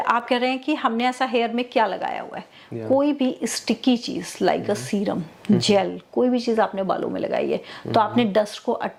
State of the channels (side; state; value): both; identical; correlation 1.00